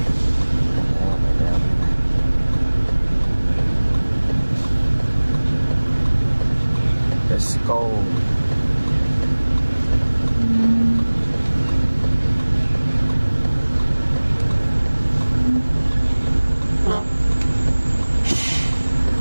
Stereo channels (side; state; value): both; inverted; correlation -1.00